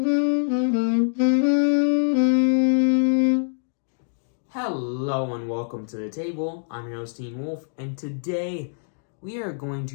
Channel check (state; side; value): silent; right; digital silence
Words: and welcome to the table. I'm your host, Teen Wolf, and today we are going